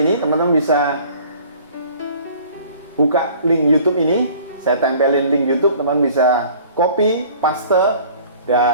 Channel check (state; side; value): inverted; both; correlation -0.50